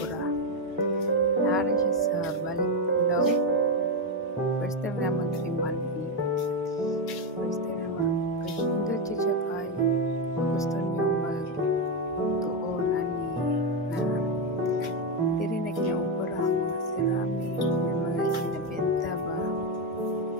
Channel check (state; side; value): normal; both; correlation 0.07